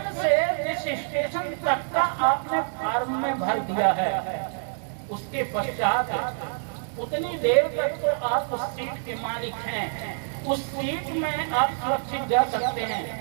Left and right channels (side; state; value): left; silent; digital silence